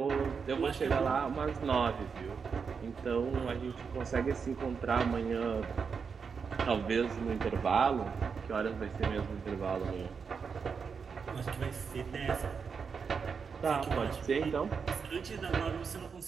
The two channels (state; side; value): quieter; left; 5.8 dB